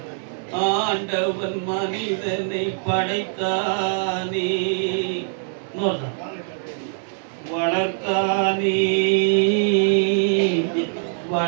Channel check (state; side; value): silent; left; 64 dB below the other